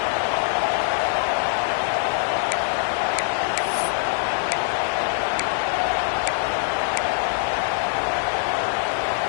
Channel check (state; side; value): silent; right; 63 dB below the other